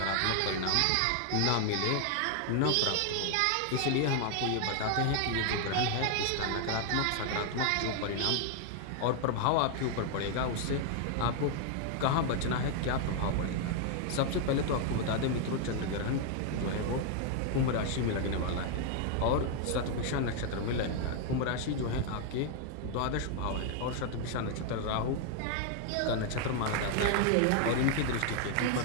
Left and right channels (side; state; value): both; different; correlation 0.00